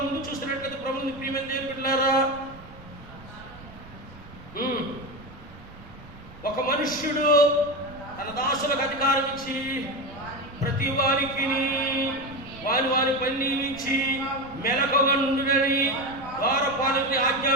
ముందు చూస్తున్నట్లయితే ప్రభువుని ప్రియమైన దేవుని బిడ్డలారా, ఒక మనుష్యుడు తన దాసులకు అధికారం ఇచ్చి ప్రతి వారికి వారి పని నియమించి మెలకువగా నుండునని ద్వారపాలకుని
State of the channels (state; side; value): noise; right; rumble, 19 dB below the sound